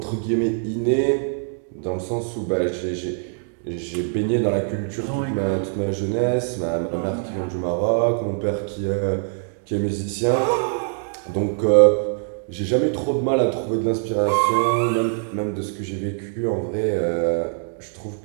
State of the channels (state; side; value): silent; left; 63 dB below the other